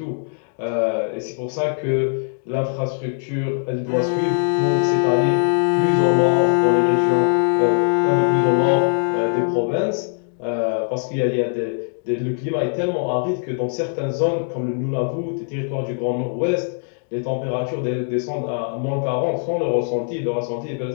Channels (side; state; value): right; silent; digital silence